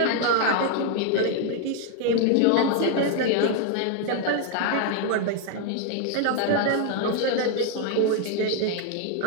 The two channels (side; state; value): both; different; correlation 0.00